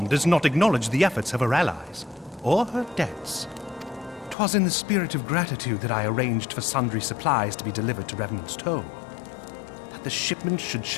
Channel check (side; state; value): right; drops out; at 4.4 s